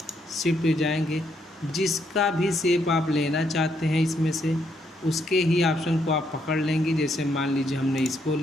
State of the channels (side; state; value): both; normal; correlation 0.74